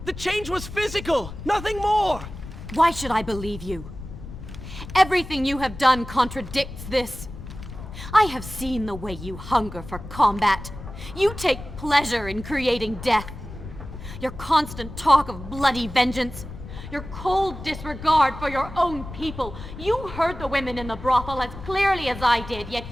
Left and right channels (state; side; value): noise; left; rumble, 12 dB below the sound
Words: The change was physical, nothing more! Why should I believe you? Everything you have done contradicts this. I have seen the way you hunger for combat. You take pleasure in creating death. Your constant talk of bloody vengeance. Your cold disregard for your own people. You heard the women in the brothel as clearly as I did, yet